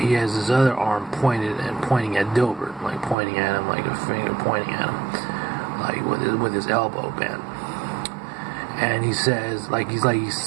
has his other arm pointing at Dilbert, like pointing at him, like a finger pointing at him, like with his elbow bent. And he says, like he's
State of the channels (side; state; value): left; drops out; at 3.2 s